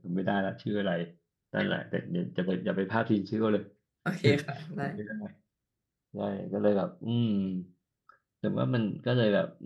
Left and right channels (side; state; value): both; identical; correlation 1.00